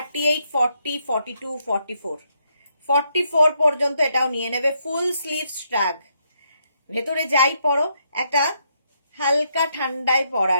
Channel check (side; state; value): both; inverted; correlation -0.76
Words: 40, 42, 44, 44 পর্যন্ত এটাও নিয়ে নেবে। ফুল স্লিভ শ্রাগ, ভেতরে যাই পরো একটা হালকা ঠান্ডায়